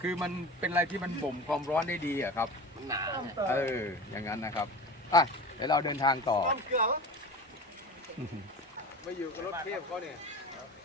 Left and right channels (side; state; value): both; normal; correlation 0.32